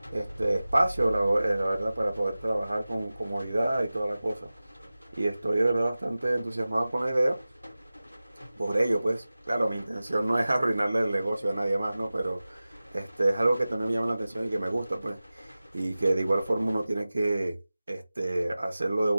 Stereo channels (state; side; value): inverted; both; correlation -0.97